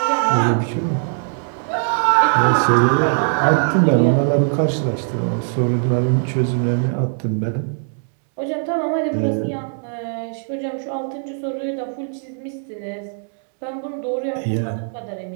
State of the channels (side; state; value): left; silent; digital silence